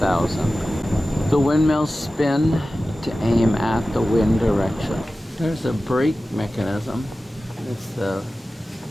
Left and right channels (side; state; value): both; normal; correlation 0.95